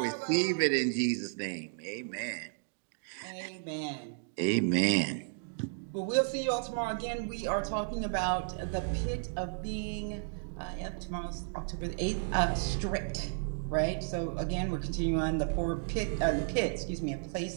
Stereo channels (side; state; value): left; silent; digital silence